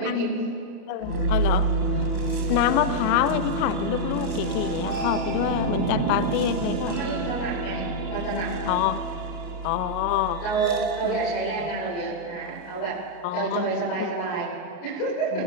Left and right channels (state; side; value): late; right; 33 ms